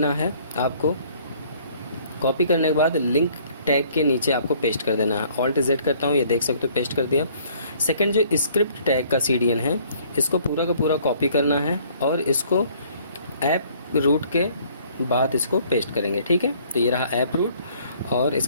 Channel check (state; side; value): inverted; both; correlation -0.59